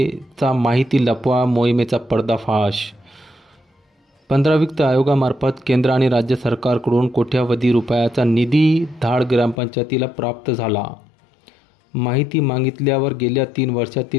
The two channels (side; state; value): right; drops out; at 9.6 s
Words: माहिती लपवा मोहिमेचा पर्दाफाश। 15 वित्त आयोगामार्फत केंद्र आणि राज्य सरकारकडून कोट्यावधी रुपयाचा निधी धाड ग्रामपंचायतीला प्राप्त झाला। माहिती मागितल्यावर गेल्या 3